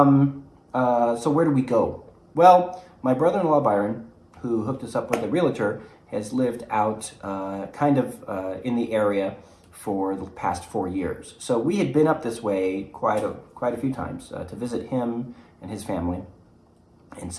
where do we go? Well, my brother-in-law, Byron, who hooked us up with a realtor, has lived out in the area for the past 4 years. So we had been up this way quite a few times to visit him and his family. And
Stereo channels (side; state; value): both; identical; correlation 1.00